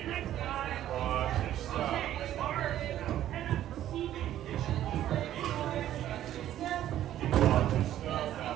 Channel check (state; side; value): quieter; left; 12.2 dB